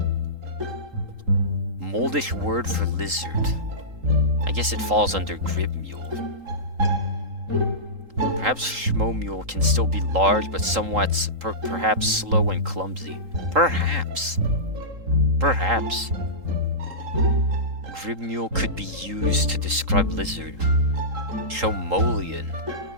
Moldish word for lizard. I guess it falls under gribmule. Perhaps schmomule can still be large, but somewhat perhaps slow and clumsy. Perhaps. Perhaps. Gribmule could be used to describe lizard. Chomolian.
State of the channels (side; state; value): left; late; 3.8 ms